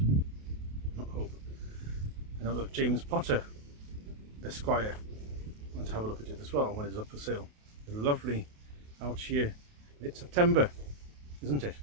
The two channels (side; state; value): left; late; 28 ms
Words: Not hope. I know that James Potter, Esquire, went to have a look at it as well when it's up for sale. It's lovely out here. It's September, isn't it?